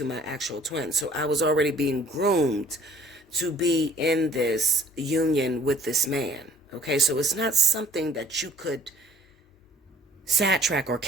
my actual twin. So I was already being groomed to be in this union with this man. Okay, so it's not something that you could sidetrack or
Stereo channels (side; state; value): both; normal; correlation 0.53